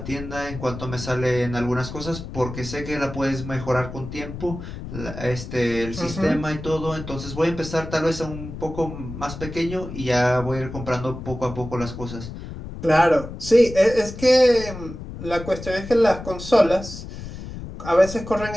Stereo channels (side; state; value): left; noise; rumble, 10 dB below the sound